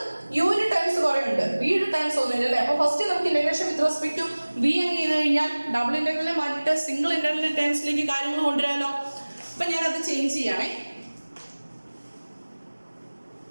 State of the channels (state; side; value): inverted; both; correlation -1.00